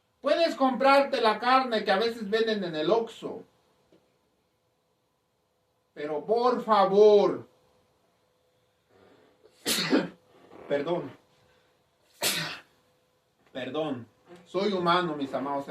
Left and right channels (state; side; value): identical; both; correlation 1.00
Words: Puedes comprarte la carne que a veces venden en el Oxxo. Pero por favor, perdón, soy humano, mis amados